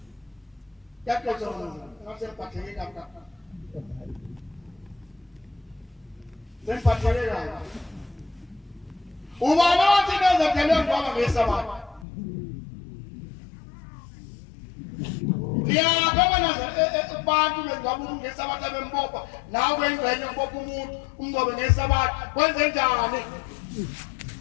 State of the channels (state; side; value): drops out; right; at 12.1 s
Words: yakhona ngasembatheke lapha Sempathelele la. Ubani othi bezothelwe ngoba ngesabatha. Ngiyabona nazo abantu bengaba ngesabatha bembopha nawe engcenye ubopha umuntu umnqobe ngesabatha kwenze njani?